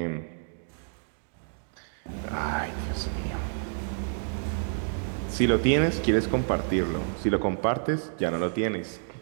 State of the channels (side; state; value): left; silent; digital silence